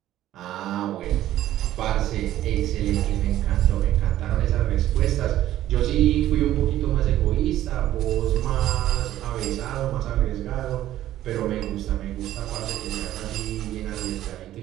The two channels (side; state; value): left; quieter; 13.4 dB